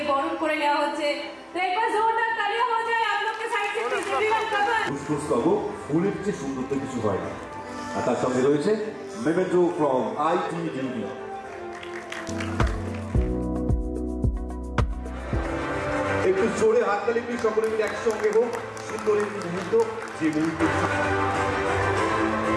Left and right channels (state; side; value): identical; both; correlation 1.00